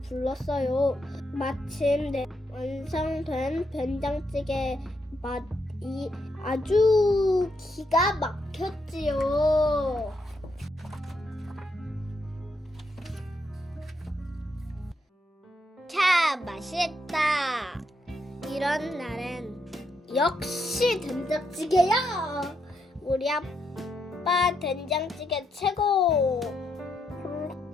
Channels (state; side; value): normal; both; correlation 0.79